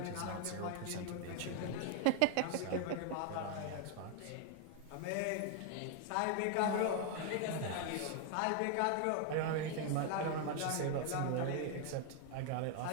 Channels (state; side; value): different; both; correlation 0.00